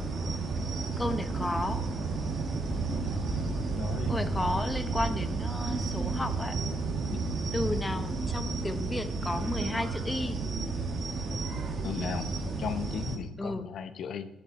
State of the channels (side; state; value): both; normal; correlation 0.76